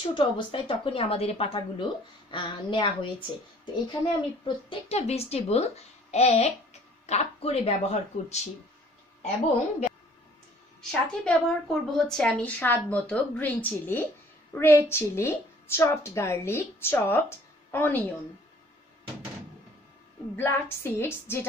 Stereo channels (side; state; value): both; normal; correlation 0.56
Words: ছোট অবস্থায় তখনই আমাদের এই পাতাগুলো নেওয়া হয়েছে। তো এখানে আমি প্রত্যেকটা ভেজিটেবল 1 কাপ করে ব্যবহার করছি এবং সাথে ব্যবহার করব হচ্ছে আমি স্বাদ মতো green chilli, red chilli, chopped garlic, chopped onion, black seeds